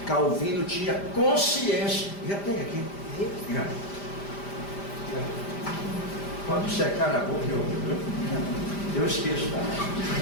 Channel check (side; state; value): right; late; 5.0 ms